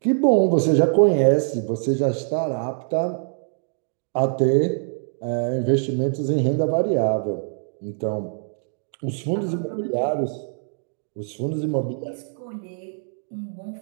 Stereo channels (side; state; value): left; silent; digital silence